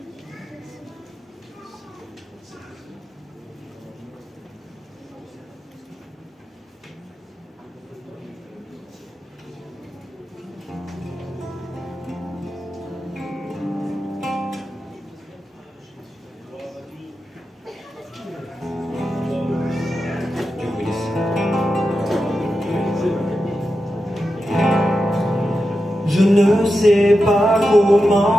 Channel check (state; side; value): normal; both; correlation 0.90